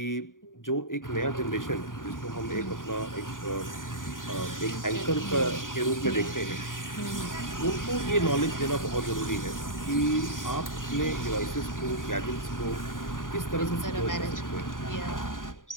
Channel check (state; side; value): late; right; 0.89 ms